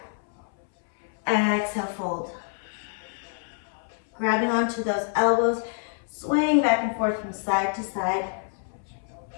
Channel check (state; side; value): silent; right; 60 dB below the other